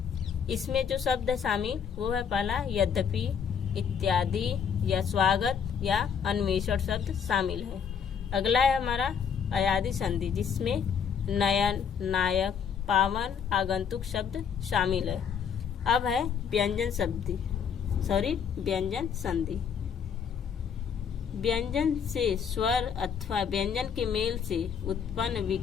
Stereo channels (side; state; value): right; quieter; 7.2 dB